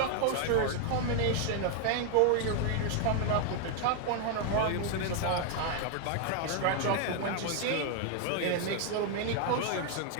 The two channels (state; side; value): different; both; correlation 0.00